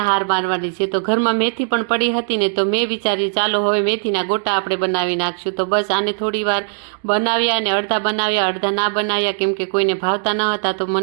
હાર મારવાની છે. તો ઘરમાં મેથી પણ પડી હતી ને તો મેં વિચાર્યું ચાલો હવે મેથીના ગોટા આપણે બનાવી નાખશું. તો બસ આને થોડી વાર બનાવ્યા અને અડધા બનાવ્યા, અડધા ના બનાવ્યા, કેમ કે કોઈને ભાવતા ન હતા. તો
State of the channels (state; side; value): silent; left; digital silence